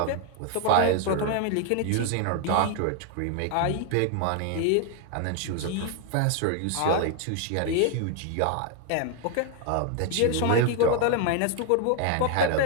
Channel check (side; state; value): both; different; correlation 0.00